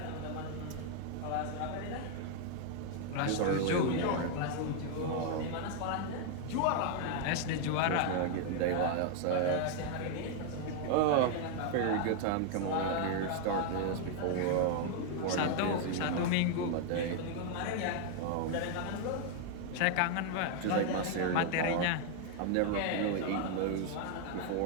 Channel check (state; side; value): different; both; correlation 0.00